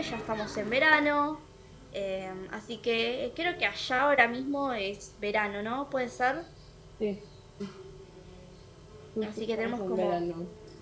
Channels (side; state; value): both; identical; correlation 1.00